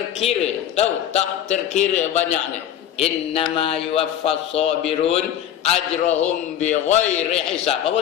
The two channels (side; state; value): right; quieter; 10.6 dB